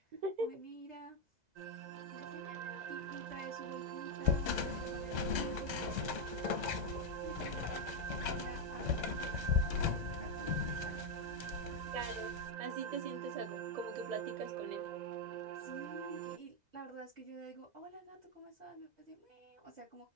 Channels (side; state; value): left; late; 2.0 ms